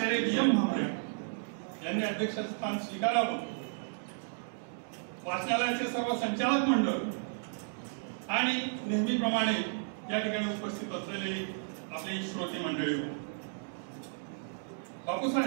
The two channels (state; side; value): silent; left; digital silence